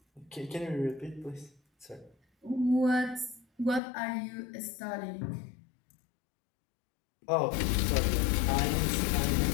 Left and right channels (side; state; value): right; drops out; at 3.8 s